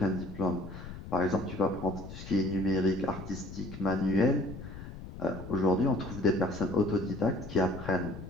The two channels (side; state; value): left; noise; rumble, 12 dB below the sound